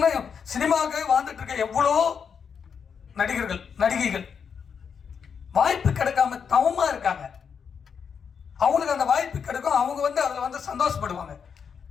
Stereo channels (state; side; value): quieter; right; 6.7 dB